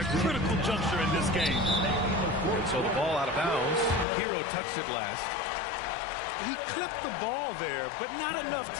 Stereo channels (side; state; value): right; drops out; at 4.0 s